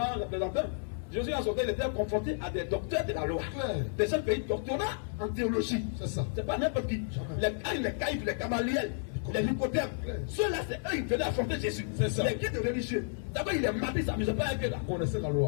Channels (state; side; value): silent; right; 57 dB below the other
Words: représentants. Jésus en sortant, il était confronté à des docteurs de la loi. Ouais. Des gens qui ont doctorat en théologie. C'est ça. C'est pas n'importe qui. Les caïfs, les camaliels, les nicodèmes. Ceux-là, c'est eux qui venaient affronter Jésus. C'est ça. Les guides religieux. D'abord, il est maté, il ne s'amusait pas avec eux là. Connaissez la